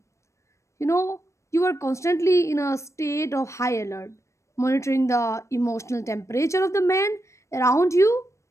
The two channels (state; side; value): late; right; 0.14 ms